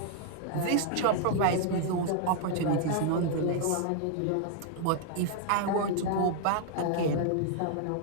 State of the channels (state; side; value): different; both; correlation 0.00